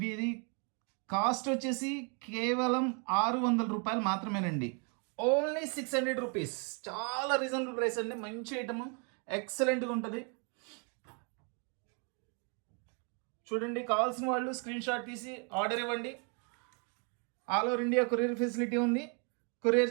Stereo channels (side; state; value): left; quieter; 37.6 dB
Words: కాస్ట్ వచ్చేసి కేవలం 600 రూపాయలు మాత్రమేనండి. Only 600 rupees. చాలా రీజనబుల్ ప్రైస్ అండి, మంచి ఐటమ్, ఎక్సలెంట్గా ఉంటుంది. చూడండి, కావాల్సిన వాళ్ళు స్క్రీన్ షాట్ తీసి ఆర్డర్ ఇవ్వండి. All over India courier facility ఉంది,